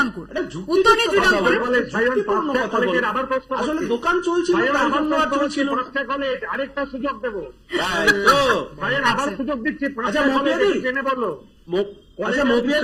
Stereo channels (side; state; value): both; identical; correlation 1.00